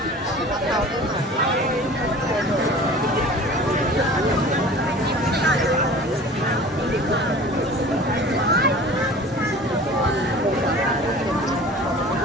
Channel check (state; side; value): normal; both; correlation 0.42